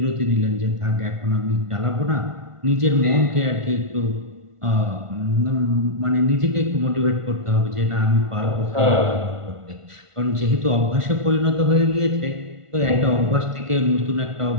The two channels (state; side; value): late; left; 1.5 ms